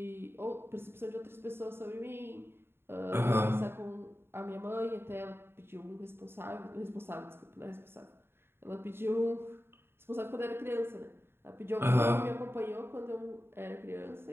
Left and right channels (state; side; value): late; left; 0.11 ms